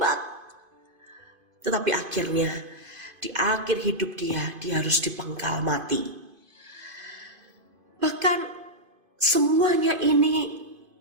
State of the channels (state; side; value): late; left; 2.5 ms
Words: Tetapi akhirnya di akhir hidup dia harus dipenggal mati. Bahkan semuanya ini